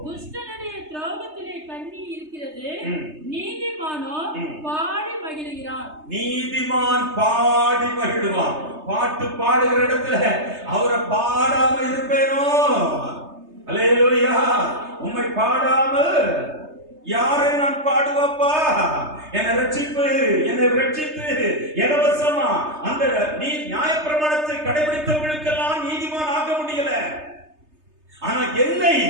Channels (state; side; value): late; left; 3.3 ms